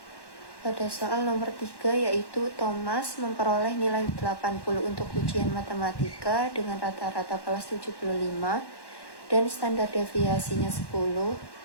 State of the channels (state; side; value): late; right; 1.1 ms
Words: Pada soal nomor 3 yaitu Thomas memperoleh nilai 80 untuk ujian matematika dengan rata-rata kelas 75 dan standar deviasinya 10.